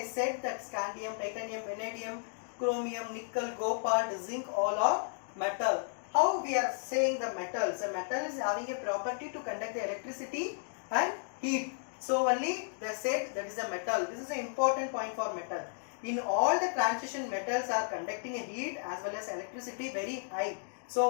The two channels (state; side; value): silent; right; digital silence